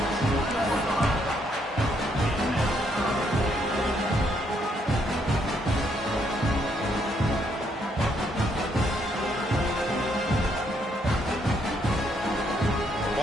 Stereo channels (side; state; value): both; normal; correlation 0.73